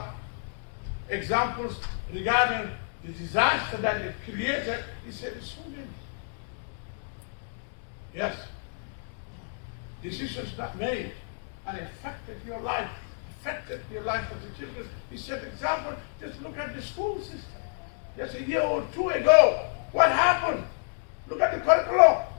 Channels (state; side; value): silent; right; digital silence